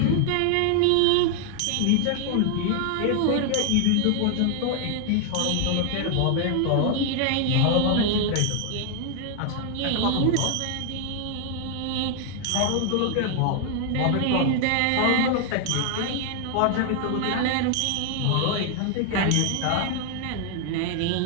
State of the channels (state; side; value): different; both; correlation 0.00